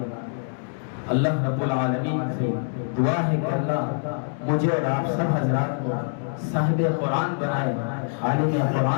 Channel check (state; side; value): silent; right; 62 dB below the other